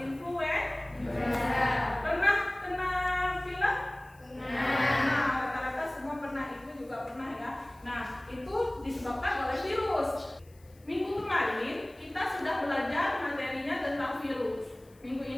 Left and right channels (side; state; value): left; noise; hiss, 30 dB below the sound